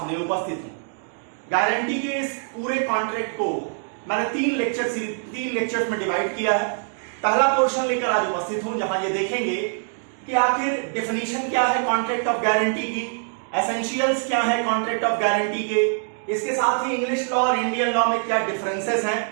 उपस्थित हूं। गारंटी के इस पूरे कॉन्ट्रैक्ट को मैंने तीन लेक्चर्स में डिवाइड किया है। पहला पोर्शन लेकर आज उपस्थित हूं जहां ये देखेंगे कि आखिर डेफिनेशन क्या है कॉन्ट्रैक्ट ऑफ गारंटी की, एसेंशियल्स क्या है कॉन्ट्रैक्ट ऑफ गारंटी के, इसके साथ ही इंग्लिश लॉ और इंडियन लॉ में क्या डिफरेंसेस हैं,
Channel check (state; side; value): silent; left; 63 dB below the other